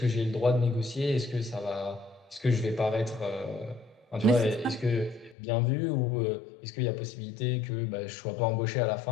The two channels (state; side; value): drops out; right; at 5.4 s